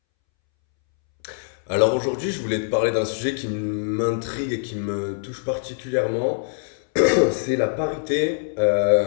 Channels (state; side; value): silent; right; 63 dB below the other